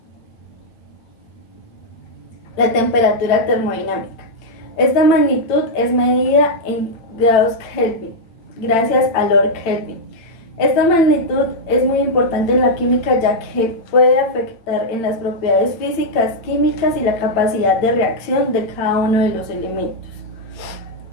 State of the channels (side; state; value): right; late; 8.9 ms